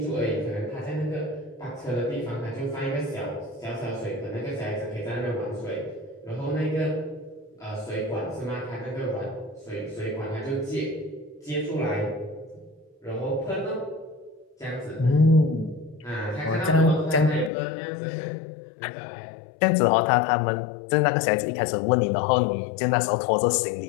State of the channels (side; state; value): right; drops out; at 17.5 s